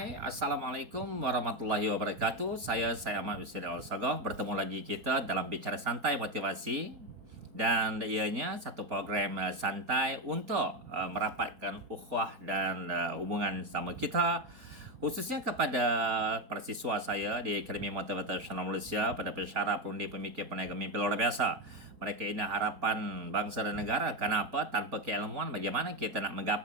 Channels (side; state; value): left; late; 4.3 ms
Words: Assalamualaikum warahmatullahi wabarakatuh. Saya Ahmad Yusri Al-Sagah. Bertemu lagi kita dalam Bicara Santai Motivasi. Dan ianya satu program santai untuk merapatkan ukhuwah dan hubungan sama kita. Khususnya kepada para siswa saya di Akademi Motivator Nasional Malaysia, pada pensyarah, perundi, pemikir, peniaga mimpi luar biasa. Mereka ini harapan bangsa dan negara. Kenapa? Tanpa keilmuan, bagaimana kita nak